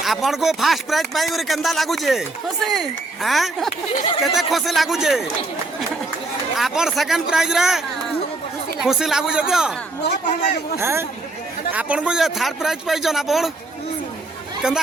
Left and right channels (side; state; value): left; quieter; 3.1 dB